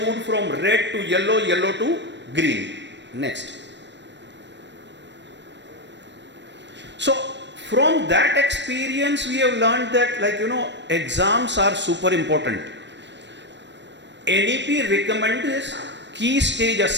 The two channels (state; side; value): late; left; 0.52 ms